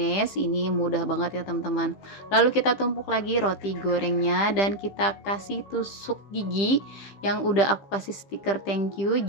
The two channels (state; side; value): late; right; 15 ms